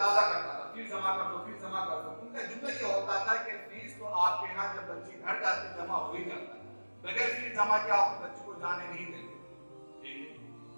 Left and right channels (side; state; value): both; inverted; correlation -1.00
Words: کرتا تھا، فیس جمع کر دو، فیس جمع کر دو۔ ان کا جملہ یہ ہوتا تھا کہ فیس تو آپ کے یہاں جب بچی گھر جاتی جمع ہو ہی جاتا ہے، بغیر فیس جمع کیا آپ بچی کو جانے نہیں دیں گے۔